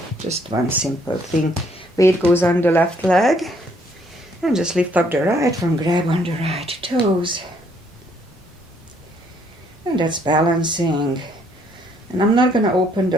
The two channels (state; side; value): normal; both; correlation 0.67